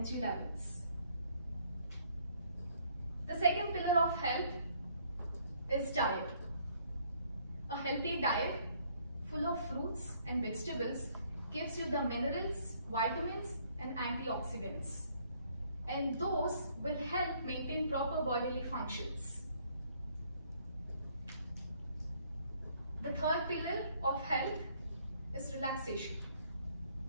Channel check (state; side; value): inverted; both; correlation -0.64